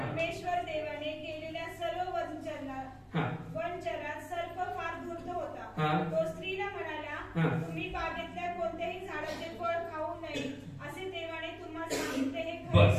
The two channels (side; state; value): both; identical; correlation 1.00